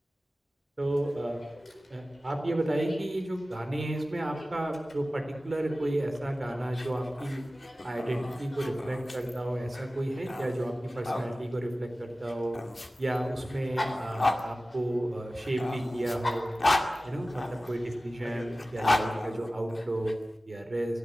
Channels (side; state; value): both; normal; correlation 0.96